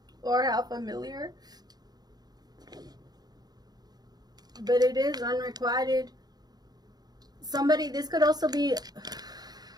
Or how familiar. But it is unrequited. Somebody, this could also be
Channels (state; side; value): late; left; 0.19 ms